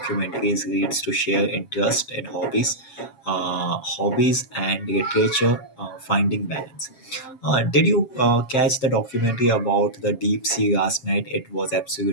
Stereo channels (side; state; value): right; late; 7.6 ms